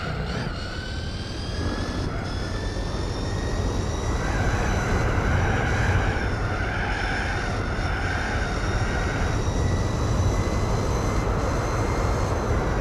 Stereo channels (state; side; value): identical; both; correlation 1.00